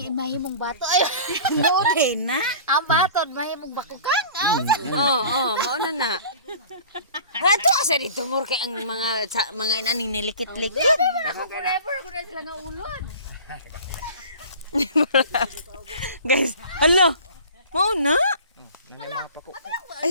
bato. Ay mo din na. Ang batod mahimong bakukan. Oo, mauna na. Ato asa dito mur kay ang mga inaning nilikit-likit. Ako forever ko na sila nga ulod. Guys, hello. Mauna.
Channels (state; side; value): inverted; both; correlation -0.42